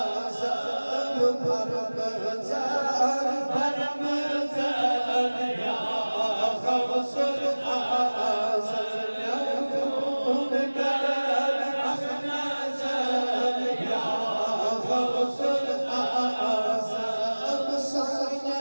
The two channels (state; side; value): inverted; both; correlation -1.00